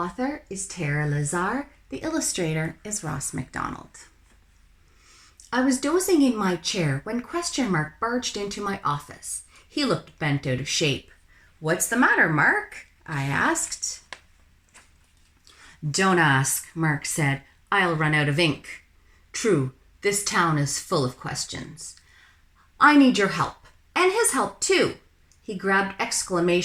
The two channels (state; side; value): identical; both; correlation 1.00